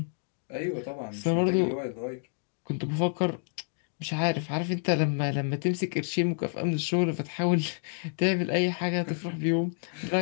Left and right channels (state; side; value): silent; right; digital silence